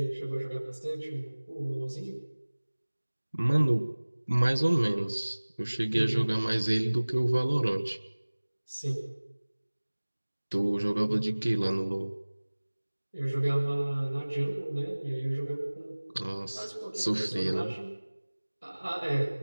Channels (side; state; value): both; inverted; correlation -1.00